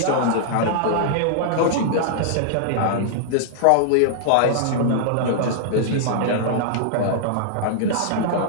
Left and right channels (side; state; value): both; different; correlation -0.01